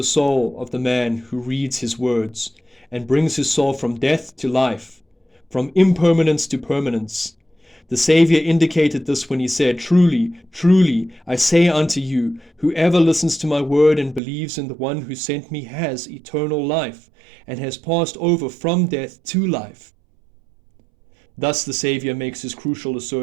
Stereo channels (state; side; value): drops out; left; at 14.2 s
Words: soul of the man who reads his words, and brings his soul from death to life, from impermanence to permanence. The Saviour indicated this when he said, "Truly, truly, I say unto you, whoever listens to my word and believes in the one who sent me has eternal life, and has passed over from death to life." Thus the Saviour makes his crucial